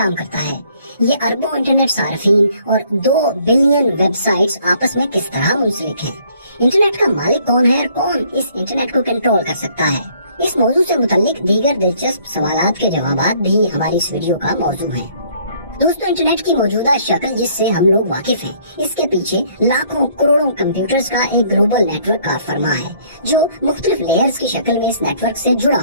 करता है? ये अरबों इंटरनेट सार्फिन और 2 बिलियन वेबसाइट्स आपस में किस तरह मुंसलिक हैं? इंटरनेट का मालिक कौन है और कौन इस इंटरनेट को कंट्रोल कर सकता है? इस मौजू से मुतल्लिक दीगर दिलचस्प सवालात के जवाबात भी हमारी इस वीडियो का मौजू है। दोस्तों, इंटरनेट की मौजूदा शक्ल जिससे हम लोग वाकिफ हैं, इसके पीछे लाखों करोड़ों कंप्यूटर्स का एक ग्लोबल नेटवर्क कार फरमा है जो मुख्तलिफ लेयर्स की शक्ल में इस नेटवर्क से जुड़ा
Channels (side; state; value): both; inverted; correlation -0.62